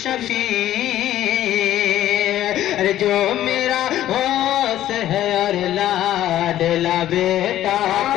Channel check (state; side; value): quieter; right; 12.8 dB